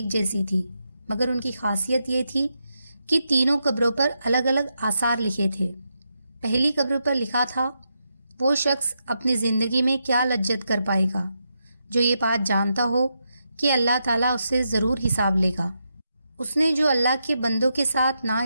جیسی تھی، مگر ان کی خاصیت یہ تھی کہ تینوں قبروں پر الگ الگ آثار لکھے تھے۔ پہلی قبر پر لکھا تھا، وہ شخص اپنی زندگی میں کیا لجت کر پائے گا جو یہ بات جانتا ہو کہ اللہ تعالیٰ اس سے ضرور حساب لے گا۔ اس نے جو اللہ کے بندوں کے ساتھ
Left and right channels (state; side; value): inverted; both; correlation -0.84